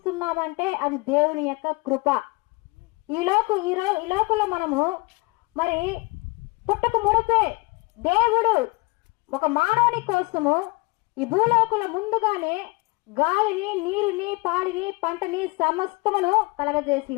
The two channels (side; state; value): right; quieter; 26.0 dB